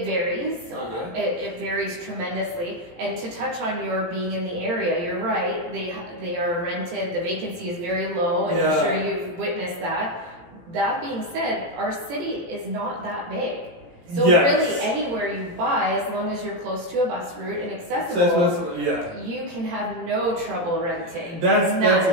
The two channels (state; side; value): late; left; 18 ms